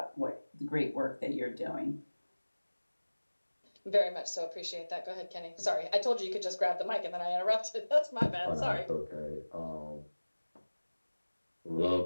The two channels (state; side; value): inverted; both; correlation -1.00